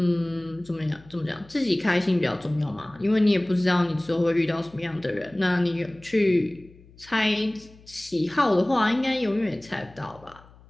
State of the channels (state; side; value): noise; left; hum, 25 dB below the sound